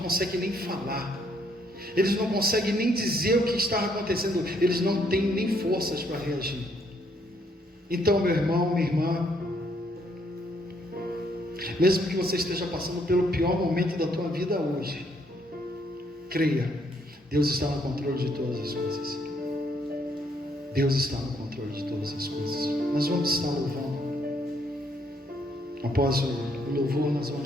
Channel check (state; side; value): normal; both; correlation 0.70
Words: nem falar, eles não conseguem nem dizer o que está acontecendo, eles não têm nem forças para reagir. Então, meu irmão, minha irmã, mesmo que você esteja passando pelo pior momento da tua vida hoje, creia, Deus está no controle de todas as coisas. Deus está no controle de todas as coisas. Nós vamos estar louvando. Após o louvor, nós